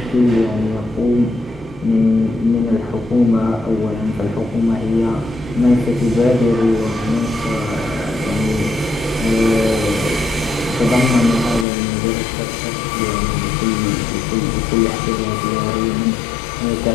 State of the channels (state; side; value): drops out; right; at 11.7 s